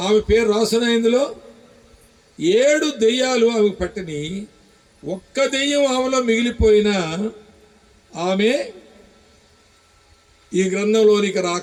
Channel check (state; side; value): identical; both; correlation 1.00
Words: పేరు రాసిన ఇందులో 7 దెయ్యాలు ఆమెకు పట్టిని. ఒక్క దెయ్యం ఆమెలో మిగిలిపోయినా ఆమె ఈ గ్రంథంలోనికి